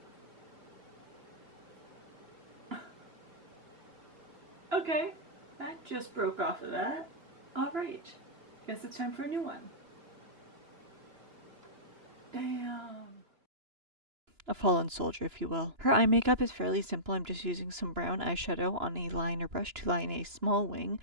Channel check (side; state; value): left; late; 2.9 ms